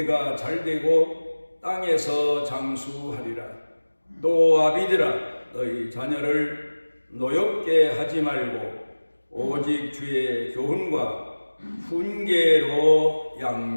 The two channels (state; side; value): inverted; both; correlation -1.00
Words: 잘되고 땅에서 장수하리라. 또 아비들아, 너희 자녀를 노엽게 하지 말고 오직 주의 교훈과 훈계로